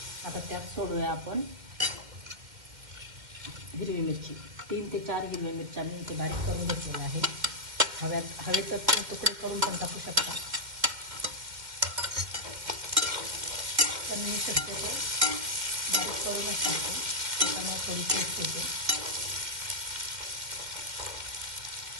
आता त्यात सोडूया आपण हिरवी मिरची. 3 ते 4 हिरव्या मिरच्या मी इथे बारीक करून घेतलेल्या आहे. हवेचा तुकडे करून पण टाकू शकता, पण मी शक्यतो बारीक करूनच टाकतो, त्याच्यामुळे थोडी टेस्ट येते.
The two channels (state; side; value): late; left; 2.1 ms